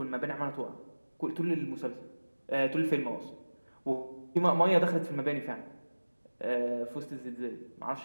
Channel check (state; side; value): inverted; both; correlation -1.00